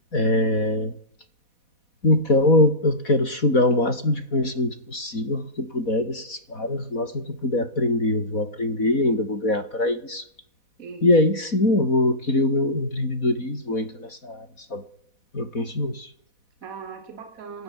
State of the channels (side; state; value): right; late; 4.1 ms